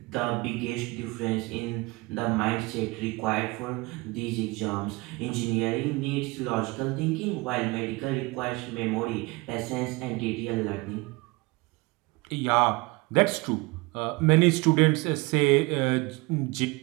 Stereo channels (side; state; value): left; quieter; 24.5 dB